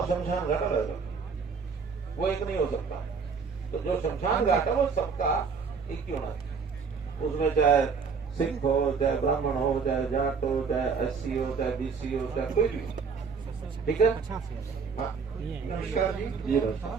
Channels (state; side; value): quieter; left; 5.5 dB